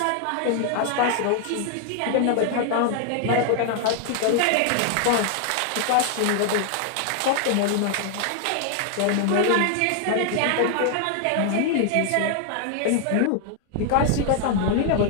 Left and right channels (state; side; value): different; both; correlation 0.00